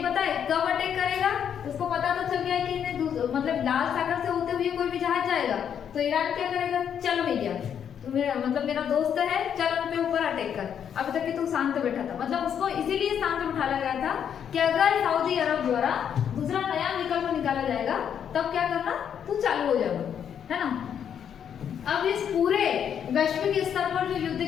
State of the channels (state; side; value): quieter; right; 8.5 dB